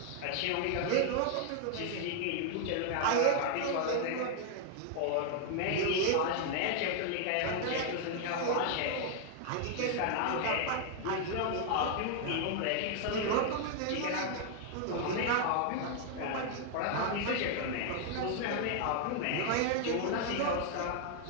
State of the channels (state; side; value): different; both; correlation 0.00